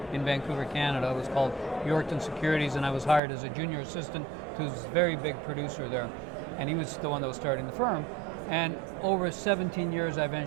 in Vancouver, Canada. It was called Yorkton Securities, and I was hired as a junior assistant to this very big producer there. And he was the one that was starting the firm. And over 17 years, I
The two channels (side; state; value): left; drops out; at 3.2 s